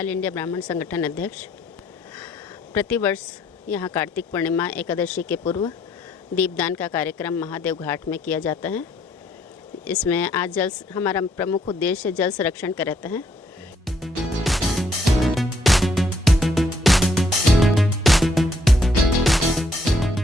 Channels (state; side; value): normal; both; correlation 0.69